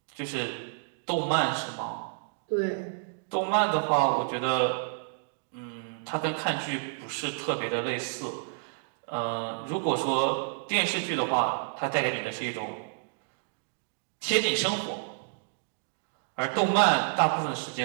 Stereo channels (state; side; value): silent; left; digital silence